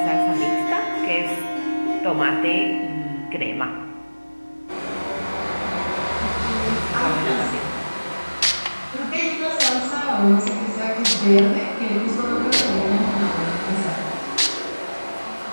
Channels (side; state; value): both; inverted; correlation -1.00